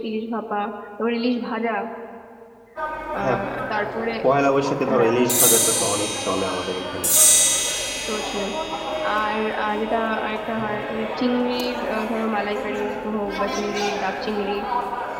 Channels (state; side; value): identical; both; correlation 1.00